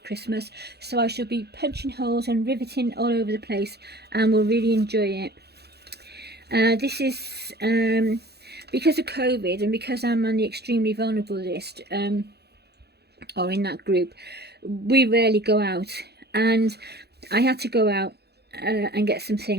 Christmas, so I shall be punching holes and riveting all over the place, and will really enjoy it. This is because of COVID, and because I'm on the extremely vulnerable list, or in that group, we rarely go out, and I had to go out and get some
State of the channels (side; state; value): left; late; 0.48 ms